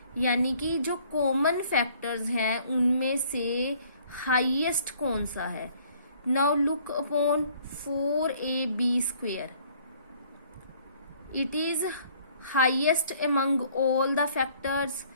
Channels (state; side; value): inverted; both; correlation -0.59